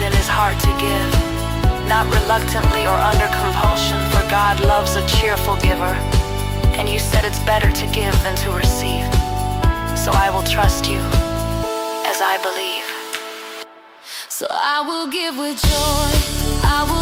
in his heart to give, not reluctantly or under compulsion, for God loves a cheerful giver. And you said it's better to give than to receive. So I will trust you as I believe. So I will give with joy, I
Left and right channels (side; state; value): both; identical; correlation 1.00